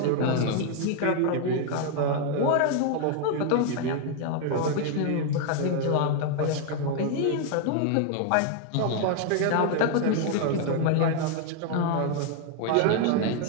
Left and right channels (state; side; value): different; both; correlation 0.00